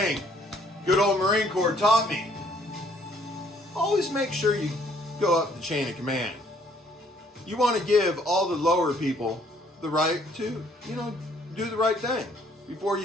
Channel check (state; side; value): normal; both; correlation 0.63